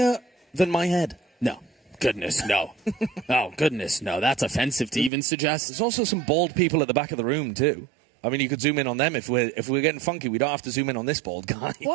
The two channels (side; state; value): left; drops out; at 5.1 s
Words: than my head? No. Goodness, no. Oh, goodness, no. That's offensive to even suggest. There's also some bald people at the back of the room too. I mean, you could zoom in on them if we're getting funky. We don't have to zoom in on this bald guy.